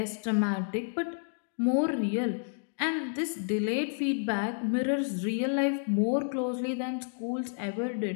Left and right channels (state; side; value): silent; right; digital silence